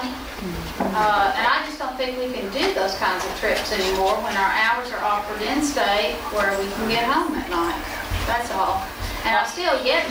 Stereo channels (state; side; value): identical; both; correlation 1.00